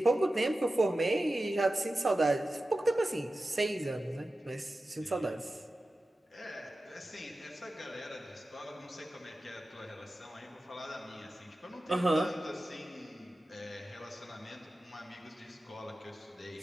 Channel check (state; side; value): normal; both; correlation 0.94